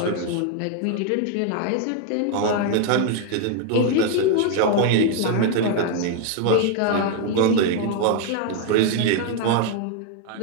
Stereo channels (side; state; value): both; different; correlation 0.01